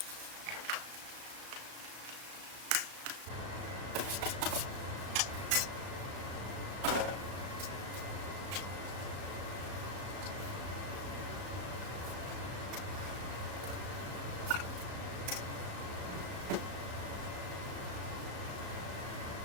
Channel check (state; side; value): late; left; 35 ms